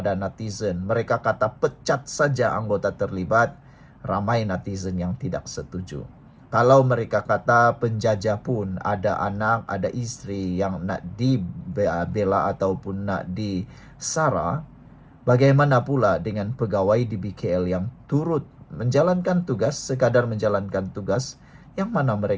netizen, mereka kata pecat saja anggota terlibat, ramai netizen yang tidak setuju. Kalau mereka kata penjajah pun ada anak, ada istri yang nak dibela ataupun nak disara, bagaimana pula dengan pegawai di BKL yang turut menjalankan tugas, sekadar menjalankan tugas, yang mana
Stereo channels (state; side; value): identical; both; correlation 1.00